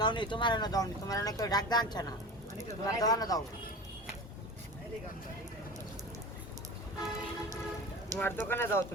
নি তোমার না যাও নি, তোমার না কেউ ডাক দাঁড়াচ্ছে না, তোমার দোকানে যাও, তোমার দোকানে যাও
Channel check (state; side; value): normal; both; correlation 0.33